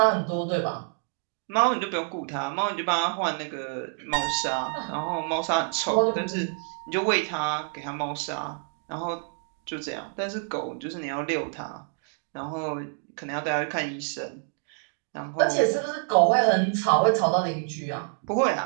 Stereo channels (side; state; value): left; silent; 60 dB below the other